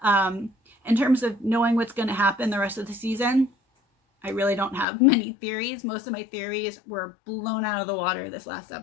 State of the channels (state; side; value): drops out; right; at 4.9 s